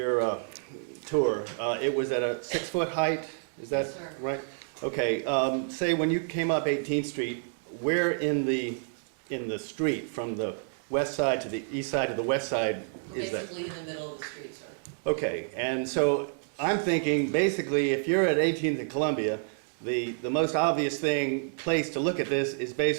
tour, it was at a 6-foot height, is that Yes, sir. right? Okay, say when you came up 18th Street, where in the street, from the west side to the east side to the west side is that? Basically in the middle of the street, sir. Okay, and so I'm thinking, basically, if you're at 18th and Columbia, the most obvious place to look at this is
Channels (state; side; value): silent; left; digital silence